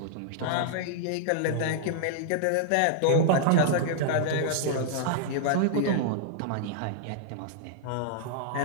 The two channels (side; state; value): both; different; correlation -0.01